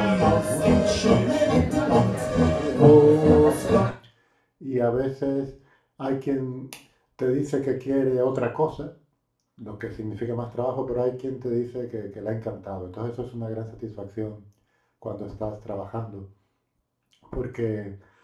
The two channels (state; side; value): identical; both; correlation 1.00